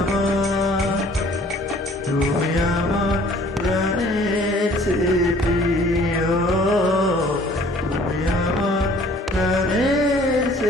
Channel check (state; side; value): normal; both; correlation 0.54